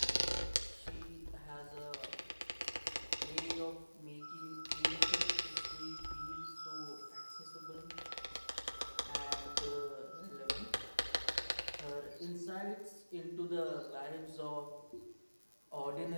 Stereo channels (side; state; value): both; inverted; correlation -1.00